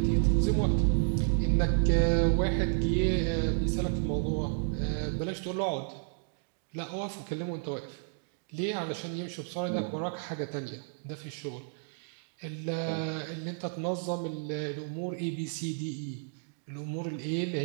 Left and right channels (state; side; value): silent; left; 57 dB below the other